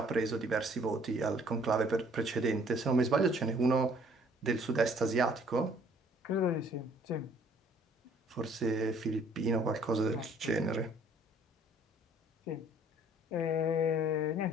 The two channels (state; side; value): normal; both; correlation 0.58